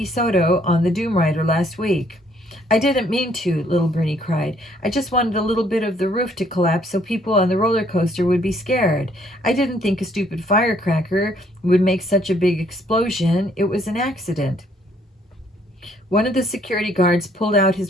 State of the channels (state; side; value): normal; both; correlation 0.65